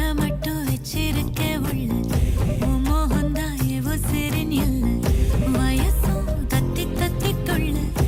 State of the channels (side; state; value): both; identical; correlation 1.00